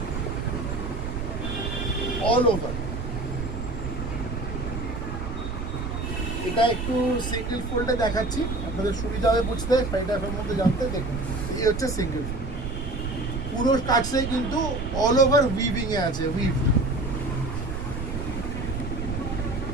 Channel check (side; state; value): right; noise; rumble, 5 dB below the sound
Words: অল ওভার। এটা একটু সিঙ্গেল ফোল্ডে দেখাচ্ছি, আপনাদের সুবিধা হবে বুঝতে, শাড়িটার মধ্যে জানতে। দেখুন, এই হচ্ছে সিঙ্গেল ফোল্ড, পুরো কাজটাই কিন্তু অল ওভার উইভিং এ আছে, উইভ।